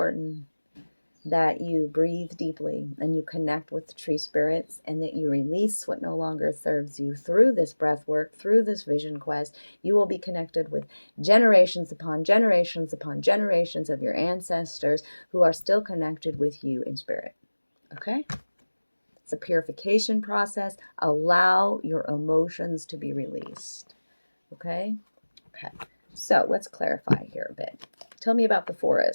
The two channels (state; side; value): inverted; both; correlation -1.00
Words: that you breathe deeply and you connect with the tree spirits, and that you release what no longer serves you through this breath work, through this vision quest. You will be connected with generations upon generations upon generations of your ancestors who are still connected with you in spirit. Okay? It's a purification process. Allow your emotions to be released. Okay? Okay. So let's clarify here a bit. Tell me about the